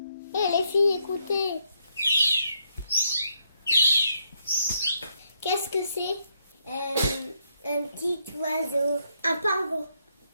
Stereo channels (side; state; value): both; inverted; correlation -0.76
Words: Les filles, écoutez. Qu'est-ce que c'est? Un petit oiseau. Un pingouin.